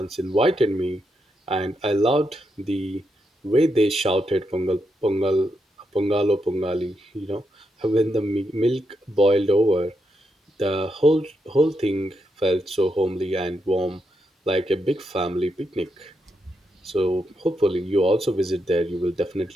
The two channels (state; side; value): normal; both; correlation 0.83